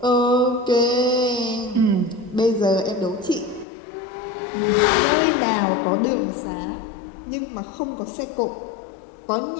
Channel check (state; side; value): drops out; right; at 3.7 s